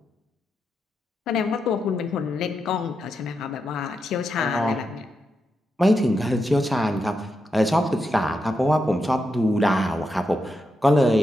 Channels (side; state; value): both; normal; correlation 0.85